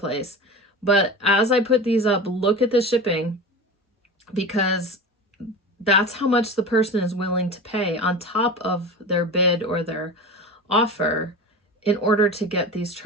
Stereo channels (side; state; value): both; normal; correlation 0.30